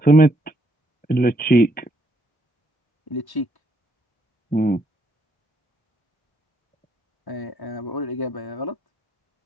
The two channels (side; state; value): right; late; 1.1 ms